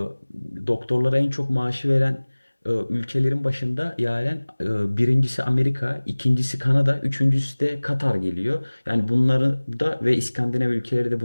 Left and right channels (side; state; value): both; inverted; correlation -1.00